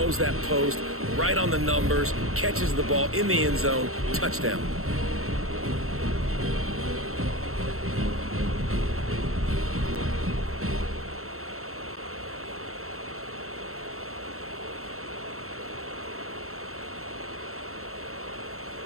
that post, right on the numbers, catches the ball in the end zone, touchdown.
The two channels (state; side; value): late; left; 0.63 ms